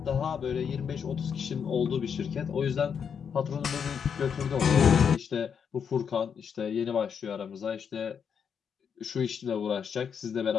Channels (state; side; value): quieter; right; 7.1 dB